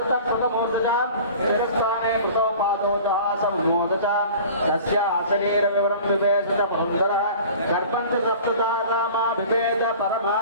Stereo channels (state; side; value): inverted; both; correlation -0.42